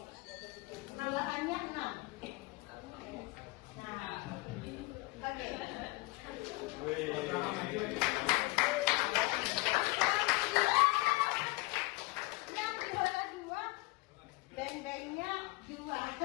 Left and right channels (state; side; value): quieter; right; 23.0 dB